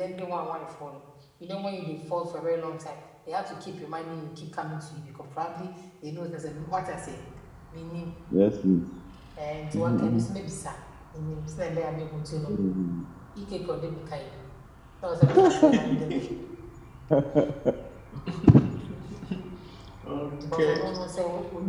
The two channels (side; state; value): both; identical; correlation 1.00